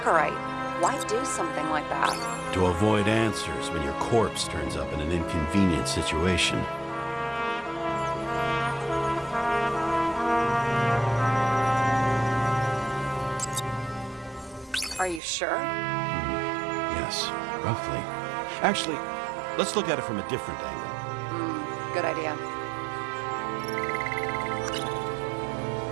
Why do something like that? To avoid answers when your corpse turns up in an inconvenient situation. Are you sure? Yes, roughly. Actually, let's look at it from a different angle. Good idea.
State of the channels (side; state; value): left; drops out; at 15.2 s